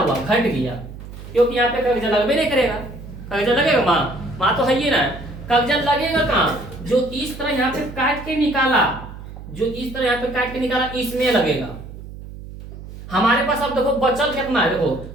घट गया, क्योंकि यहाँ पे कगजा लगबे नहीं करेगा। कगजा लगेगा माँ तो है ही ना, कगजा लगेगा कहाँ, जो इस तरह यहाँ पे काट के निकाला, जो इस तरह यहाँ पे काट के निकाला, इसमें लगेगा। हमारे पास अब देखो बचल कितना है, देखो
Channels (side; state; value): right; noise; hum, 13 dB below the sound